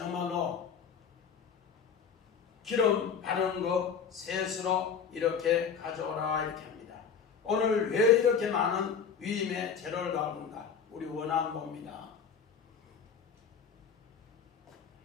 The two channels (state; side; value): quieter; right; 6.6 dB